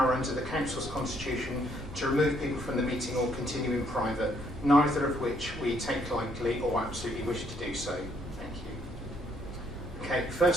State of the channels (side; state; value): both; normal; correlation 0.69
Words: under the Council's constitution to remove people from the meeting or continue in private, neither of which we take lightly or absolutely wish to do so. Okay,